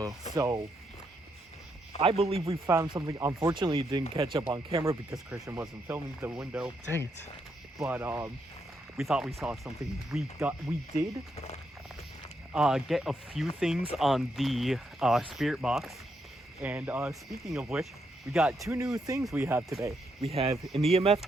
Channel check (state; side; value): normal; both; correlation 0.79